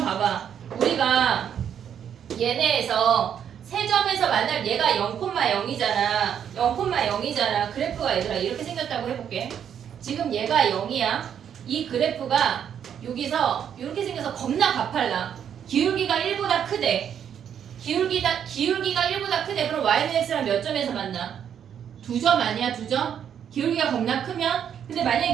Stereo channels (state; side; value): quieter; left; 8.7 dB